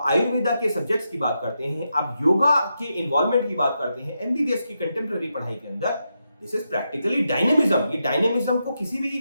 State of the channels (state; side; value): inverted; both; correlation -0.85